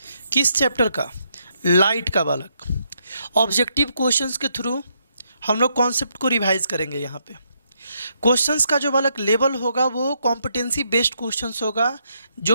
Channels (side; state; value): both; inverted; correlation -0.77